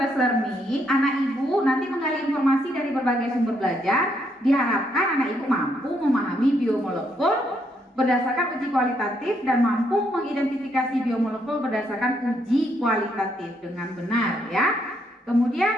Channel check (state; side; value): normal; both; correlation 0.74